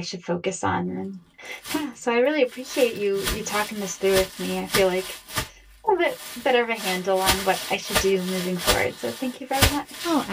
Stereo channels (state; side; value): identical; both; correlation 1.00